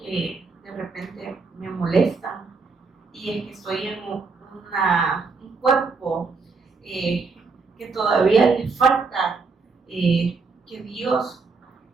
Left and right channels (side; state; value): left; quieter; 4.4 dB